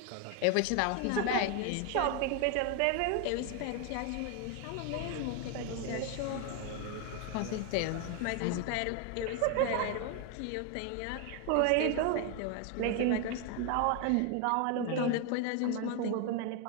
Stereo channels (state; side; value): different; both; correlation 0.01